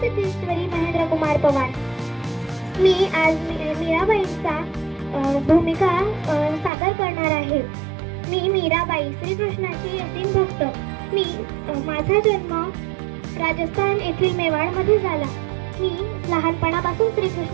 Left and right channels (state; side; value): drops out; left; at 6.7 s